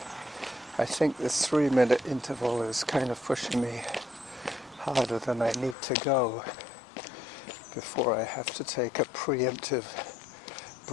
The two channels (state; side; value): drops out; right; at 5.8 s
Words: I think the 3 minute interval is kind of pushing me harder than I need to go. before I have to take a preemptive